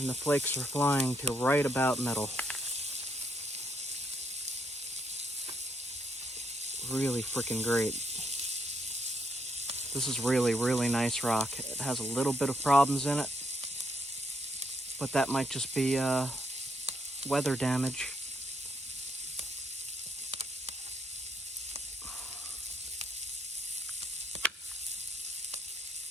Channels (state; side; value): normal; both; correlation 0.74